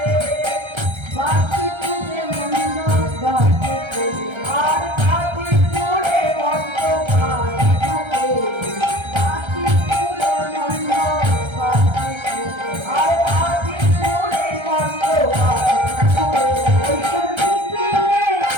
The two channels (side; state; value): left; late; 1.3 ms